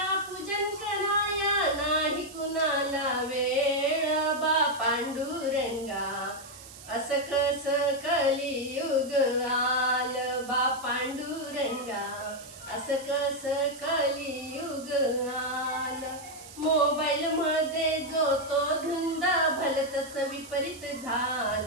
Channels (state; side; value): noise; right; hiss, 17 dB below the sound